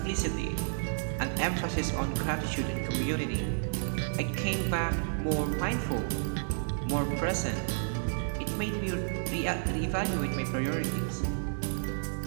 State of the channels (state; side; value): silent; left; 57 dB below the other